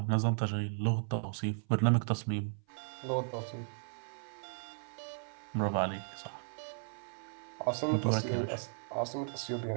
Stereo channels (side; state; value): left; silent; 54 dB below the other